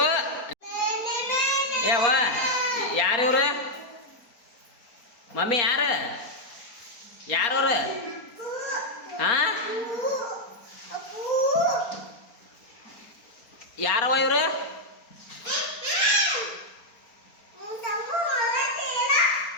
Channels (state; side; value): late; right; 4.3 ms